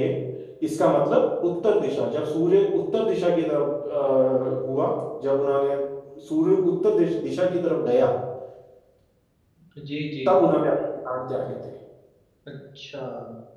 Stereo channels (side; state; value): both; identical; correlation 1.00